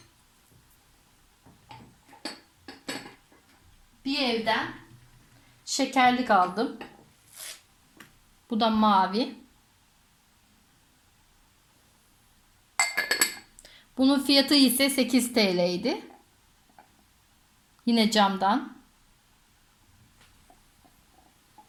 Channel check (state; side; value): identical; both; correlation 1.00